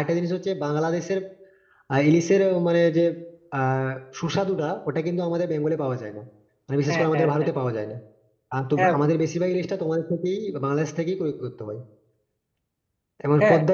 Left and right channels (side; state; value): both; identical; correlation 1.00